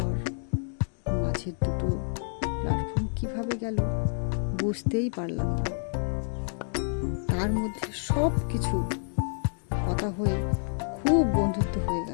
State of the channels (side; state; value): right; silent; digital silence